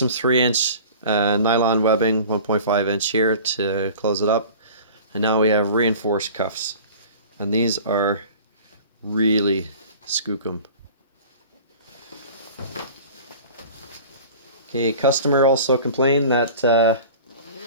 3-inch nylon webbing, 1.5-inch here to close it up. And now we have reinforced cuffs. And these are really skookum. Okay, customer also complained that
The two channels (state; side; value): inverted; both; correlation -0.42